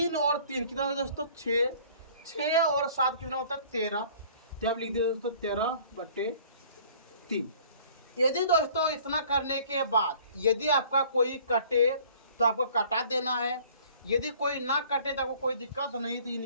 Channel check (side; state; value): both; inverted; correlation -0.53